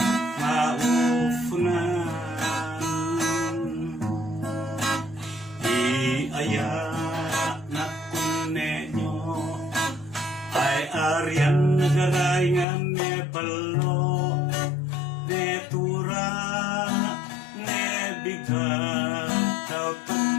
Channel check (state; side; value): drops out; right; at 12.7 s